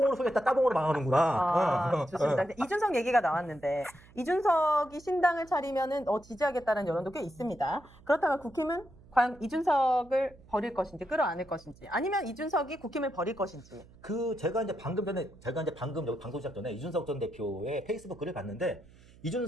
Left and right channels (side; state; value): right; noise; hum, 24 dB below the sound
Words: 흥했다, 따봉으로 망하는구나. 좋습니다. 이준석 얘기가 나왔는데 이준석이 신당을 차리면은 지지하겠다는 여론도 꽤 있습니다. 그렇다면 국힘은 과연 이준석을 버릴 것인지 끌어안을 것인지 아니면 이준석이 국힘을 버릴 것인지. 제가 이제 방금 여기 방송 시작 전에 이준석 전 대표의 페이스북 글을 봤는데